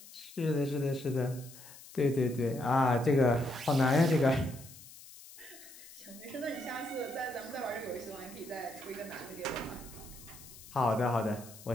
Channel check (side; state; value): left; noise; hiss, 18 dB below the sound